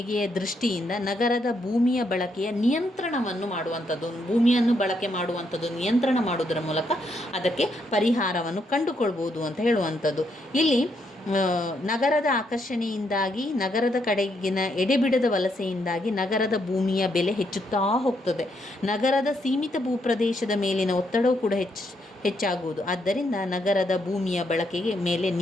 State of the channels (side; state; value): both; normal; correlation 0.76